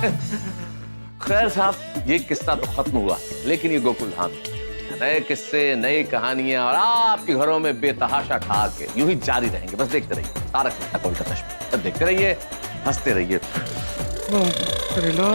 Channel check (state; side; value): inverted; both; correlation -1.00